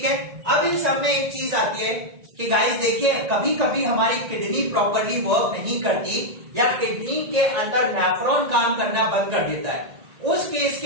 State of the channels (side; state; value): left; late; 1.9 ms